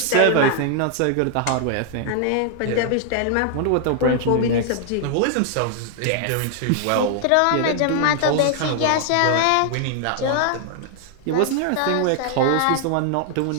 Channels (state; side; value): different; both; correlation 0.00